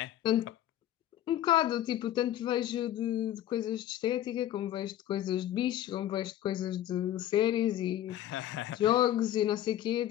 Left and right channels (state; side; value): quieter; right; 12.4 dB